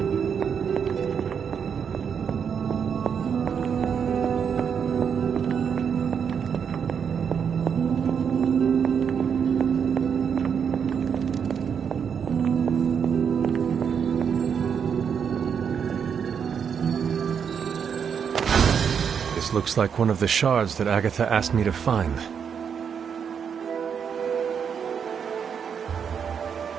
This looks like one of the shards that Agatha asked me to find.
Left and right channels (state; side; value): quieter; left; 7.2 dB